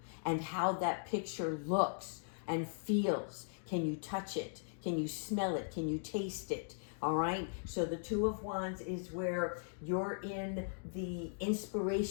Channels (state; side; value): silent; right; digital silence